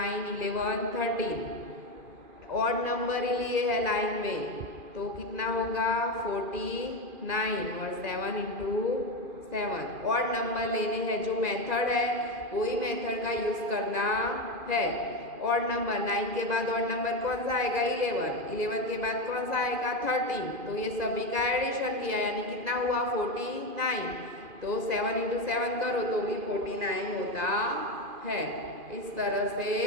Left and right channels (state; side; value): late; left; 2.5 ms